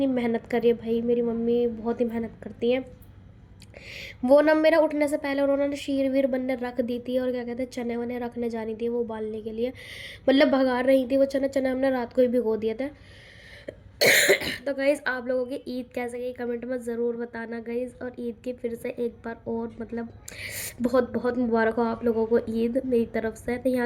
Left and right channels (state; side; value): identical; both; correlation 1.00